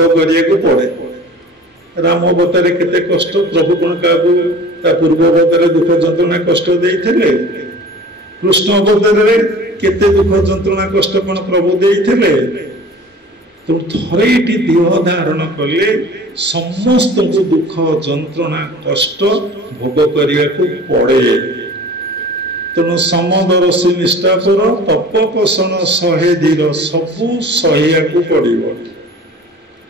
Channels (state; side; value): normal; both; correlation 0.42